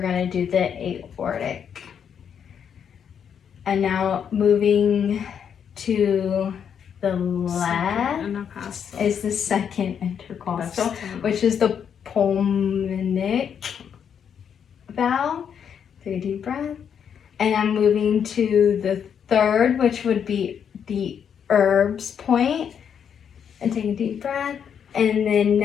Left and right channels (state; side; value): quieter; right; 7.9 dB